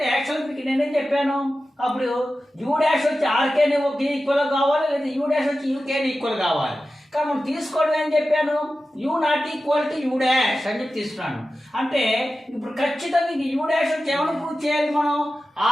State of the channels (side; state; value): both; normal; correlation 0.94